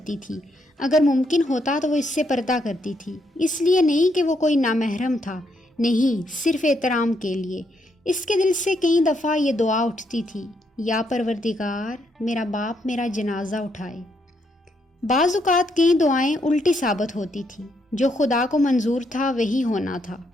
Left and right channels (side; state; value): both; normal; correlation 0.76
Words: تھی، اگر ممکن ہوتا تو وہ اس سے پردہ کرتی تھی، اس لیے نہیں کہ وہ کوئی نامحرم تھا، نہیں، صرف احترام کے لیے۔ اس کے دل سے کئی دفعہ یہ دعا اٹھتی تھی، یا پروردگار میرا باپ میرا جنازہ اٹھائے۔ بعض اوقات کئی دعائیں الٹی ثابت ہوتی تھیں، جو خدا کو منظور تھا وہی ہونا تھا۔